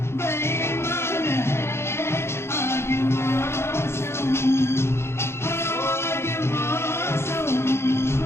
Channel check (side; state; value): right; late; 0.12 ms